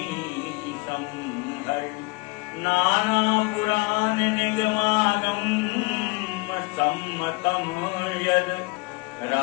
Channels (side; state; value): right; quieter; 27.1 dB